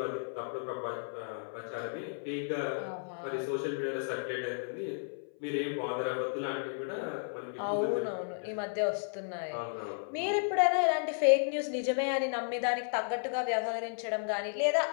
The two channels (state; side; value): silent; right; 56 dB below the other